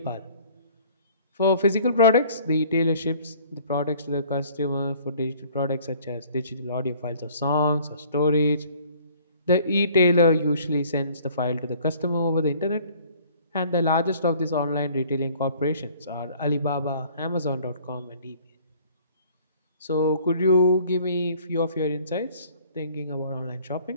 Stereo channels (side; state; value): both; inverted; correlation -0.54